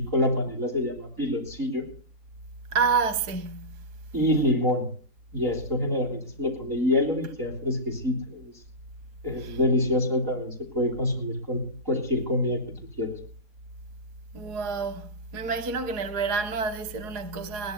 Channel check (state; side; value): late; left; 4.7 ms